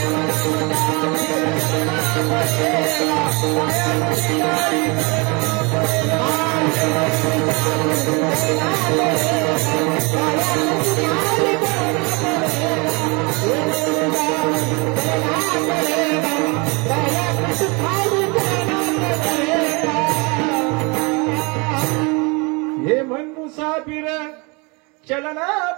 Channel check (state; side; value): quieter; left; 29.3 dB